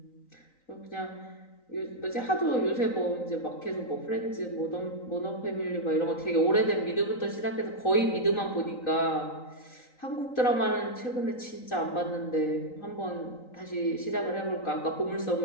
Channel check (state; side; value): late; right; 3.9 ms